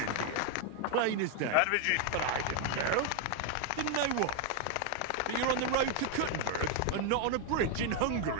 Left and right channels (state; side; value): different; both; correlation 0.00